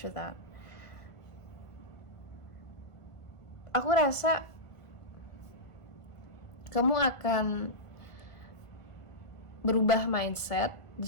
that. Aku rasa kamu akan berubah mindset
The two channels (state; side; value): late; right; 1.5 ms